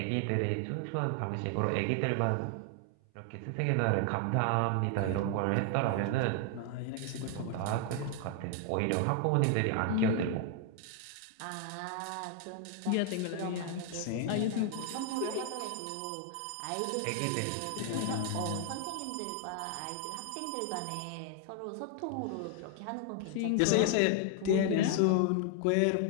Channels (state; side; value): different; both; correlation 0.00